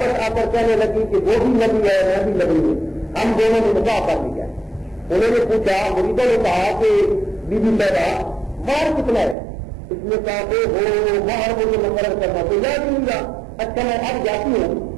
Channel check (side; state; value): left; drops out; at 9.3 s